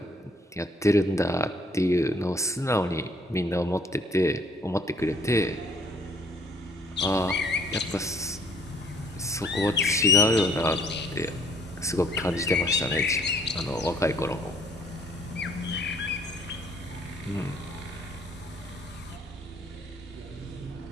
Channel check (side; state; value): both; normal; correlation 0.60